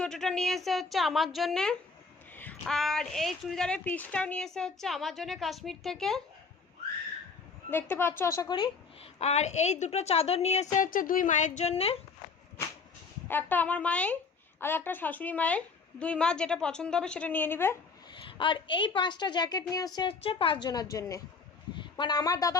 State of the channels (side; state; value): right; quieter; 4.8 dB